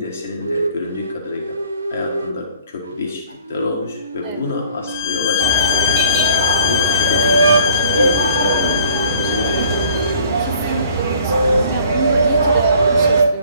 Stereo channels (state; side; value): inverted; both; correlation -0.54